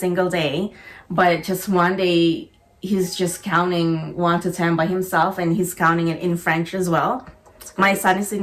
day, but just one day he's just counting 1 to 10 by himself, and he's counting it in French as well. My son is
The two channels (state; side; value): identical; both; correlation 1.00